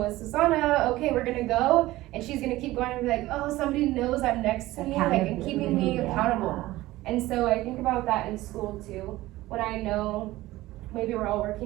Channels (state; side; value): quieter; left; 17.4 dB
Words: with Susanna, okay, we're gonna go, and she's gonna keep going and be like, oh, somebody knows I'm next to me, like, and keeping me accountable. And so I think about that in school too, when I know maybe we're all